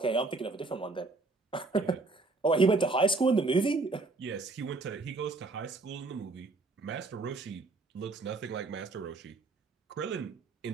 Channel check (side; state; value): left; quieter; 3.5 dB